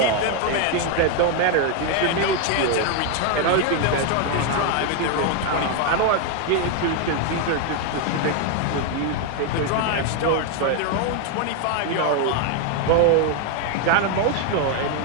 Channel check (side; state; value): both; different; correlation 0.01